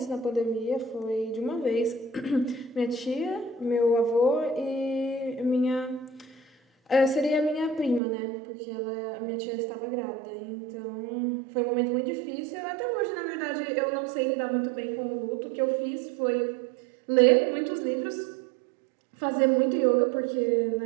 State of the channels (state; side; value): drops out; left; at 8.0 s